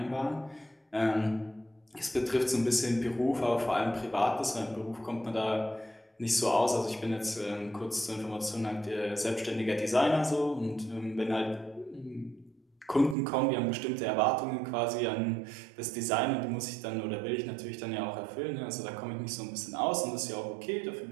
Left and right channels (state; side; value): drops out; left; at 13.2 s